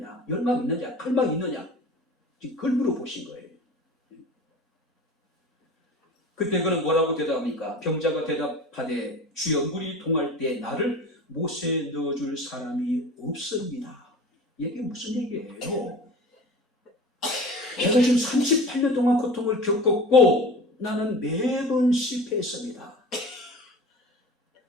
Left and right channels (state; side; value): normal; both; correlation 0.37